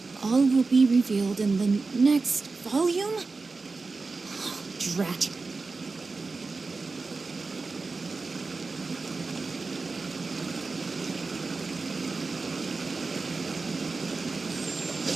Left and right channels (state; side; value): quieter; left; 4.0 dB